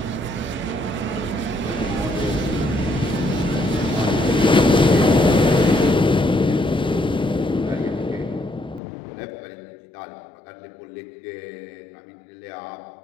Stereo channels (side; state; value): right; drops out; at 8.8 s